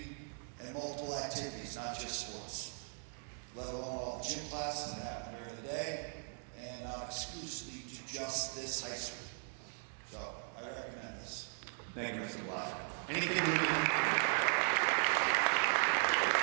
and multiple activities, not just sports, let alone all the gym classes that happen during the day and not exclusively to just this high school. So I recommend this. Thank you, Mr. Blaska. Anything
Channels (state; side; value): silent; left; 52 dB below the other